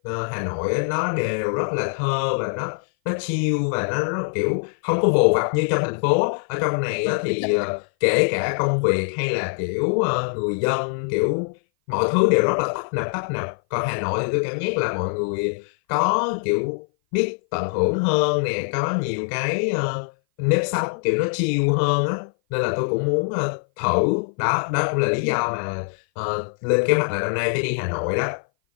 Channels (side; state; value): right; silent; 58 dB below the other